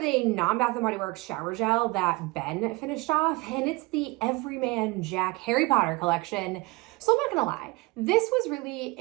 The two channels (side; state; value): left; quieter; 23.6 dB